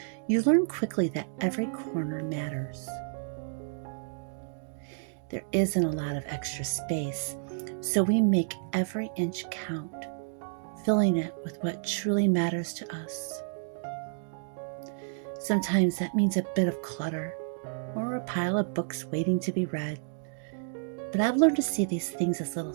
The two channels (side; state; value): left; silent; digital silence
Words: you learn quickly that every corner matters. There isn't a lot of extra space, so we make every inch count, filling it with what truly matters to us. Sometimes that means a bit of clutter or a pile of books waiting to be read. But I've learned to see these things as little